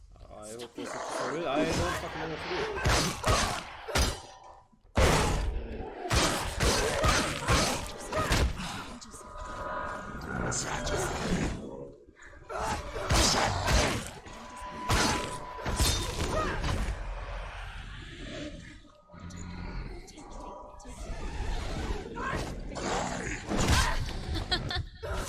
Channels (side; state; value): both; identical; correlation 1.00